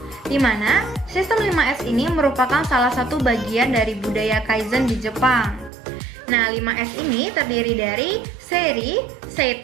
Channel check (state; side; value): drops out; left; at 5.7 s